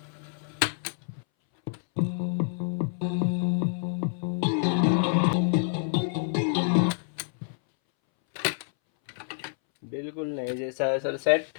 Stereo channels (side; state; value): right; silent; 60 dB below the other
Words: बिल्कुल नए जैसा है सर सेट,